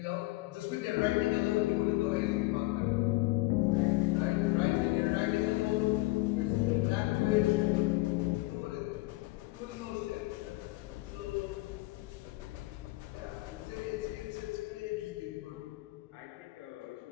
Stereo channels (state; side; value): quieter; right; 21.0 dB